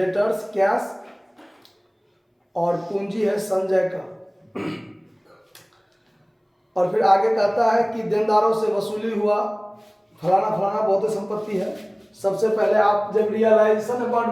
cash, और पूंजी है संजय का। और फिर आगे कहता है कि देनदारों से वसूली हुआ फलाना फलाना बहुत संपत्ति है। सबसे पहले आप जब रियलाइजेशन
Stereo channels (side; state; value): both; identical; correlation 1.00